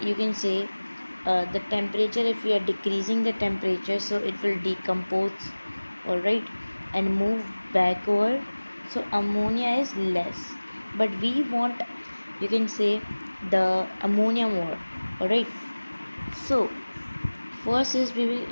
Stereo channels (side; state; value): both; inverted; correlation -1.00